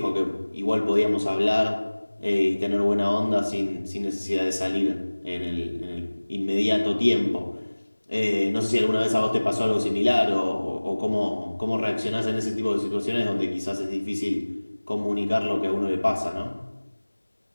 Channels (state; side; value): inverted; both; correlation -1.00